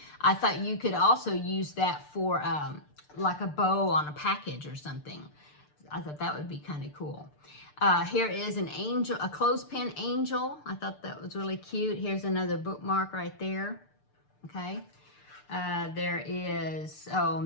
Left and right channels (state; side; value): late; right; 6.7 ms